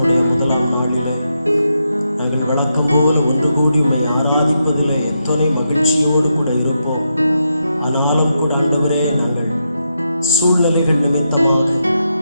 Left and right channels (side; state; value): both; inverted; correlation -0.84